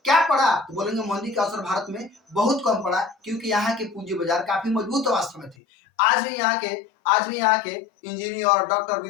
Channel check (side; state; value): right; drops out; at 5.6 s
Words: क्या पड़ा? तो बोलेंगे मंदी का असर भारत में बहुत कम पड़ा क्योंकि यहाँ के पूंजी बाजार काफी मजबूत अवस्था में थे। आज भी यहाँ के इंजीनियर और डॉक्टर